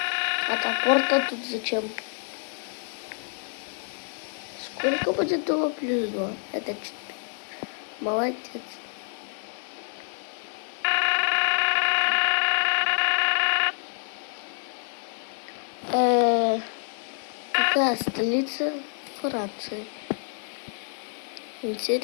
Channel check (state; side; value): silent; right; 60 dB below the other